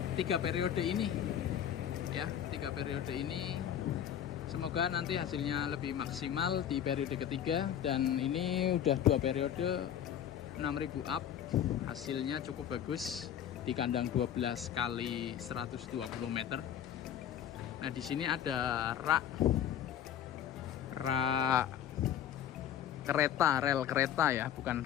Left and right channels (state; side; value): quieter; right; 9.8 dB